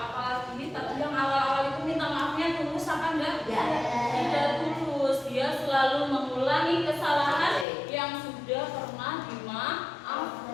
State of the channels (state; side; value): drops out; right; at 7.7 s